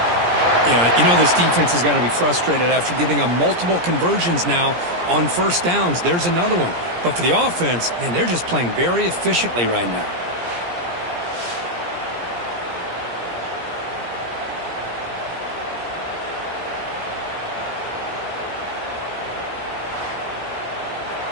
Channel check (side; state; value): left; late; 17 ms